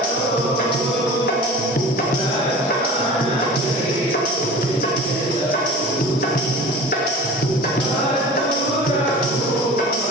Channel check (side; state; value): both; normal; correlation 0.38